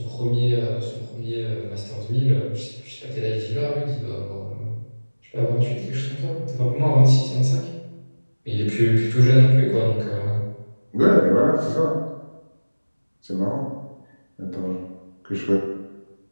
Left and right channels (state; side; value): inverted; both; correlation -1.00